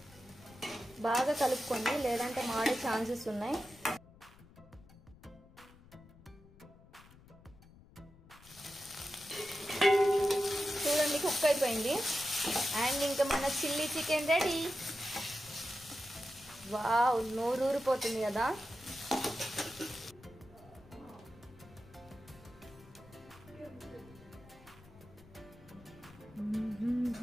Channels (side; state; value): left; noise; rumble, 23 dB below the sound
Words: బాగా కలుపుకోండి, లేదంటే మాడే ఛాన్సెస్ ఉన్నాయి. చూడండి కుక్ అయిపోయింది. అండ్ ఇంకా మన చిల్లీ చికెన్ రెడీ. వావ్, నోరూరిపోతుంది కదా.